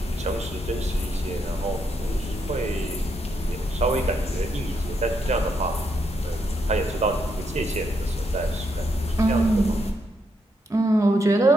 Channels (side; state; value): both; normal; correlation 0.78